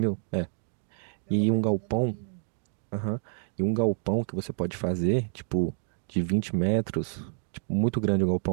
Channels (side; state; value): left; silent; digital silence